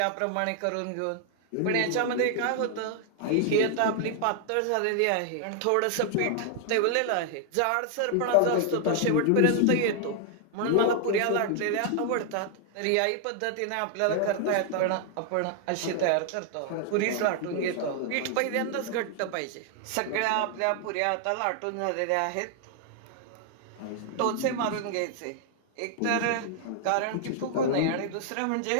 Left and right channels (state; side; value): different; both; correlation 0.00